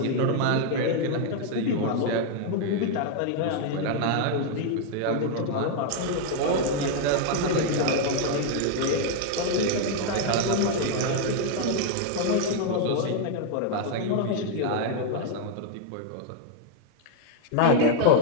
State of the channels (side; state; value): both; different; correlation 0.00